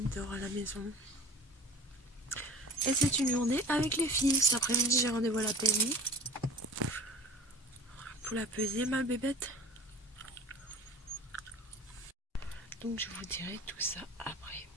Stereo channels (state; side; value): normal; both; correlation 0.41